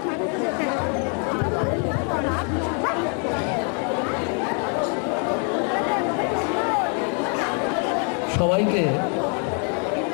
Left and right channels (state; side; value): quieter; right; 39.5 dB